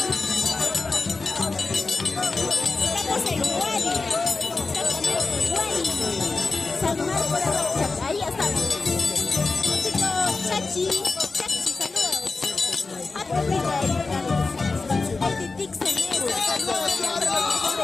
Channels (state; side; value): quieter; right; 3.9 dB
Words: Estamos en Guari. San Marco de Rocha, ahí estamos. Chicos, Chachi, saludos.